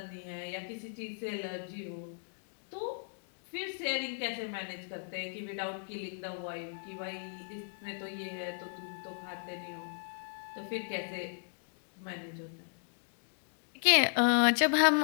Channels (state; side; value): silent; right; digital silence